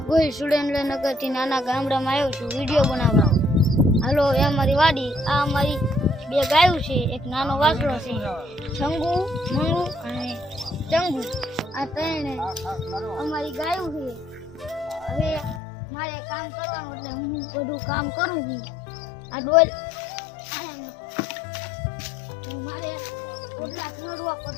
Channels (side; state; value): right; drops out; at 15.6 s